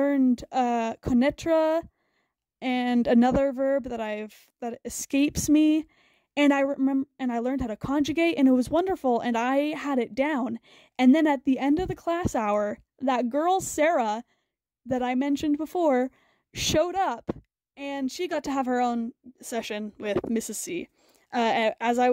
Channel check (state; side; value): identical; both; correlation 1.00